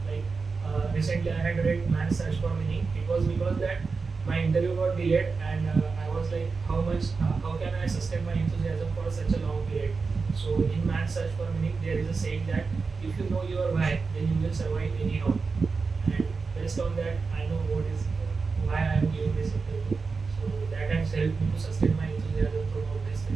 Like recently I had read Man's Search for Meaning. It was because that my interview got delayed and I was like, how can I sustain my enthusiasm for such a long period? So in Man's Search for Meaning, there is a saying that if you know your why, then you will survive anyhow. And based on that, I know why I am giving this interview. So that has helped me to sustain my enthusiasm throughout this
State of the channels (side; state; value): left; quieter; 4.6 dB